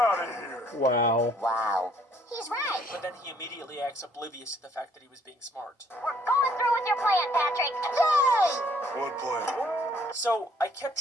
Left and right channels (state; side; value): normal; both; correlation 0.64